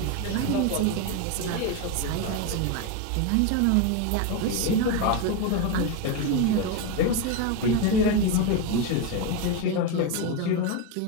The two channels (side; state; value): both; different; correlation 0.03